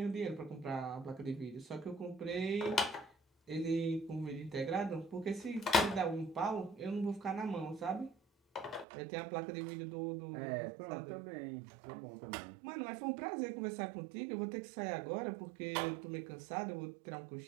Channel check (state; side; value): drops out; left; at 8.8 s